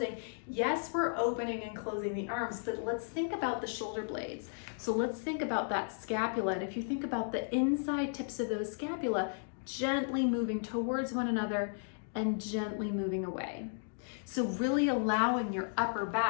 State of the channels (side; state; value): right; silent; digital silence